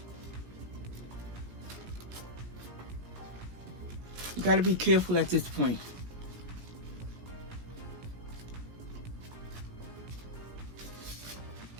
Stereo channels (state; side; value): late; left; 17 ms